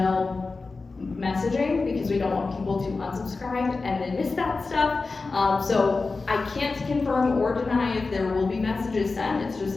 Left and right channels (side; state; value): right; quieter; 3.9 dB